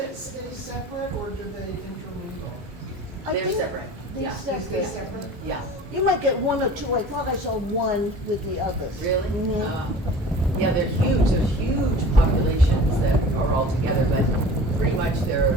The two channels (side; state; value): both; normal; correlation 0.41